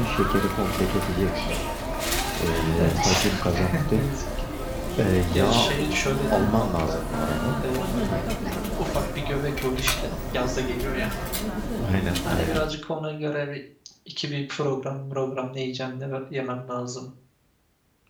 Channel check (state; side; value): identical; both; correlation 1.00